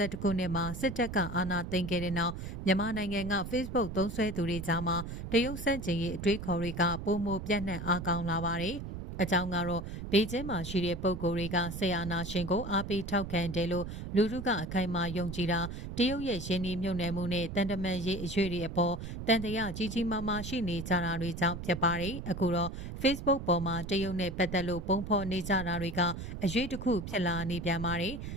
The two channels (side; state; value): right; noise; rumble, 8 dB below the sound